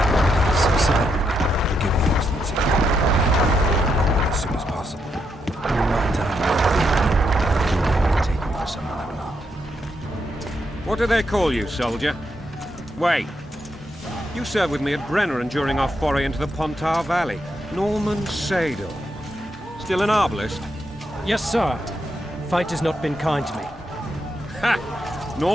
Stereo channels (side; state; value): both; normal; correlation 0.80